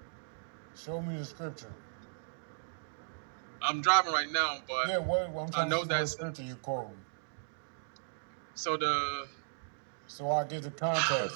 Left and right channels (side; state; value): left; silent; digital silence